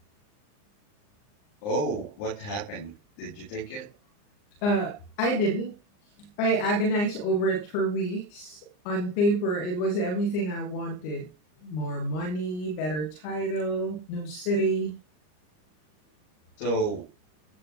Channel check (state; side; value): late; right; 39 ms